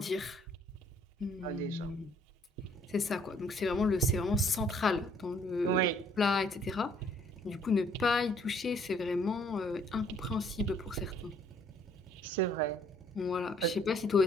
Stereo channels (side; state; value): both; normal; correlation 0.62